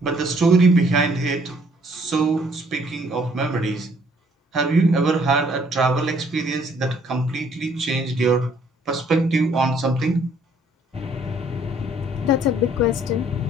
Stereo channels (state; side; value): normal; both; correlation 0.63